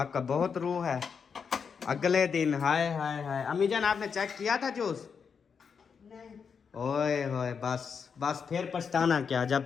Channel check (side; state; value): right; quieter; 6.3 dB